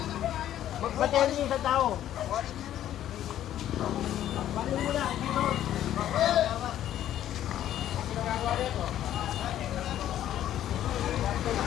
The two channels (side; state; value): right; quieter; 11.8 dB